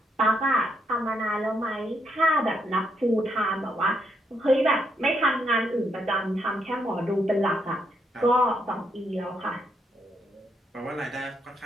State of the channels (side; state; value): both; normal; correlation 0.76